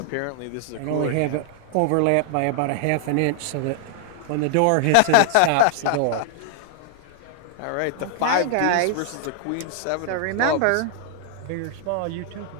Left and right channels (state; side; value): different; both; correlation 0.00